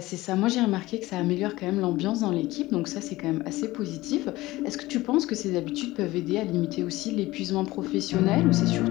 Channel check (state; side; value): quieter; right; 18.5 dB